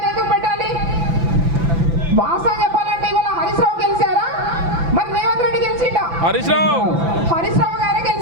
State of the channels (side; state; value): left; late; 5.9 ms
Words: ఎందుకు పెట్టాలి? వాస్తవం చెప్పాలంటే ఇవాళ హరీష్ రావు గెలిచారా, మరి రేవంత్ రెడ్డి గెలిచిండా? హరీష్ రావు గారే